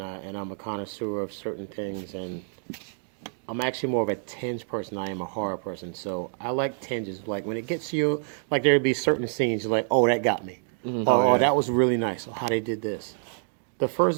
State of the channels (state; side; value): silent; left; 60 dB below the other